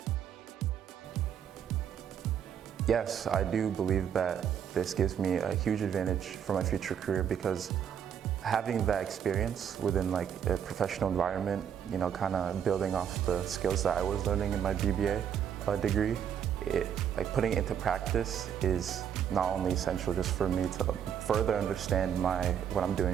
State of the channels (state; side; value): quieter; left; 8.7 dB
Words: Yes, I do believe that this gives me a huge advantage for my future career, because having that experience within a professional environment, you know, kind of building off the skills that I was learning in my BBA degree, putting it into practice is not only essential just for me to further understand what I'm